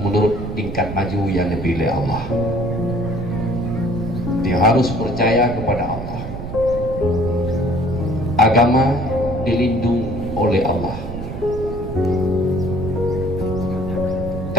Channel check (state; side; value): noise; right; rumble, 8 dB below the sound